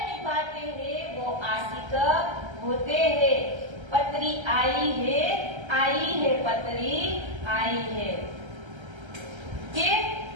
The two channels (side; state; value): left; late; 1.3 ms